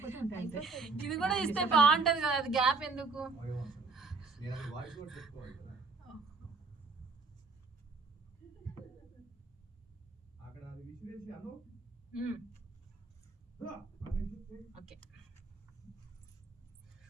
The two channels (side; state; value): left; quieter; 4.1 dB